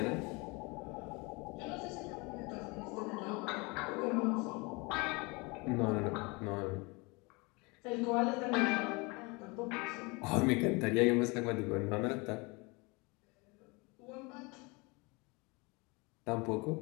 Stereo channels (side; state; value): right; quieter; 27.3 dB